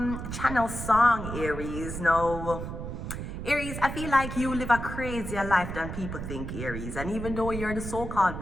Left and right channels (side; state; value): right; noise; rumble, 6 dB below the sound